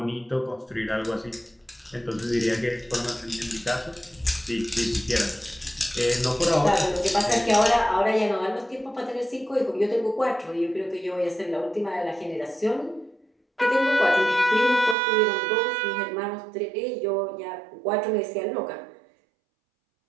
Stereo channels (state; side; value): drops out; left; at 15.0 s